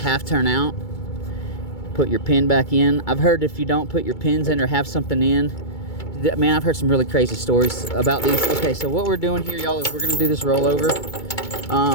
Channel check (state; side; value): late; right; 2.3 ms